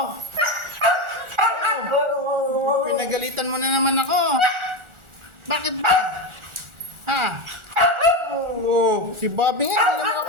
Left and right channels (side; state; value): left; late; 1.4 ms